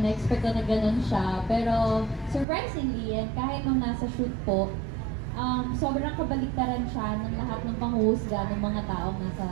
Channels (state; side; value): drops out; left; at 2.5 s